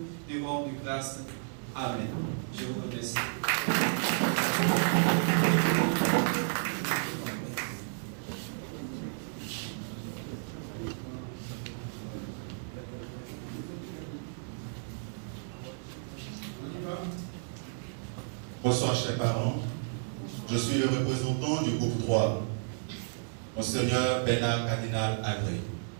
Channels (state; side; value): silent; left; digital silence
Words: te rendent grâce. Amen. Je vous remercie. Bonsoir chers parents, je suis le représentant du groupe 3, Monseigneur Bernard Cardinal Agré.